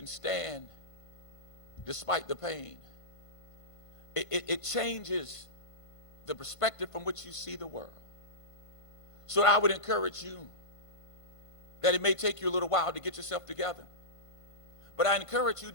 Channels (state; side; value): late; right; 1.5 ms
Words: stand despite the pain, it changes the perspective from which you see the world. So I would encourage you that it may take you a little while to get yourself together, but I encourage you